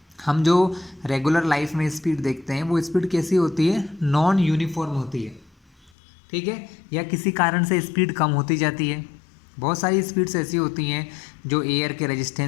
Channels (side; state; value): right; drops out; at 5.9 s